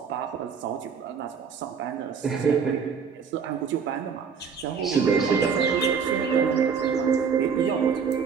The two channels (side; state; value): left; quieter; 6.3 dB